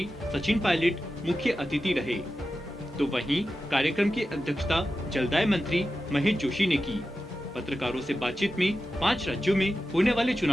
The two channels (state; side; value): normal; both; correlation 0.92